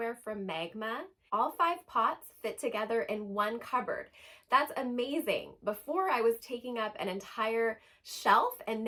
from Magma. All 5 pots fit together in one cupboard. That's amazing. Before I was taking up an entire shelf and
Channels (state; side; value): identical; both; correlation 1.00